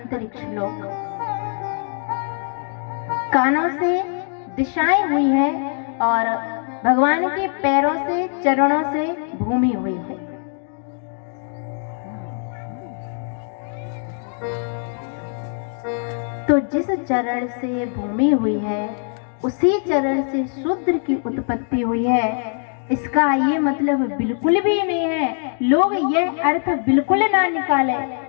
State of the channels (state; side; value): silent; right; 55 dB below the other